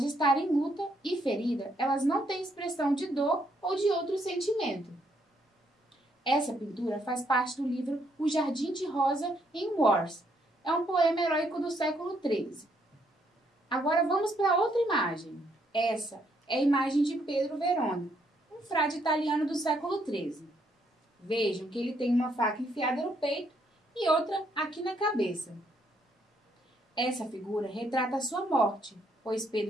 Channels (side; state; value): both; normal; correlation 0.72